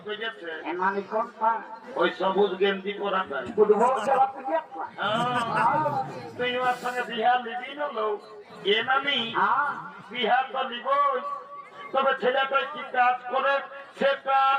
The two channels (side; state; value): both; identical; correlation 1.00